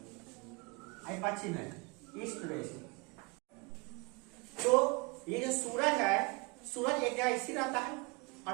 ये पश्चिम है, ईस्ट वेस्ट। तो ये जो सूरज है, सूरज एक जगह स्थिर रहता है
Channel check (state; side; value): quieter; left; 27.9 dB